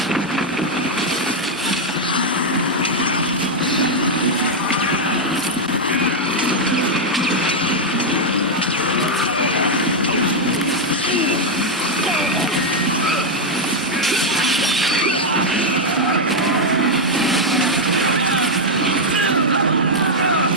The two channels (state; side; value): normal; both; correlation 0.00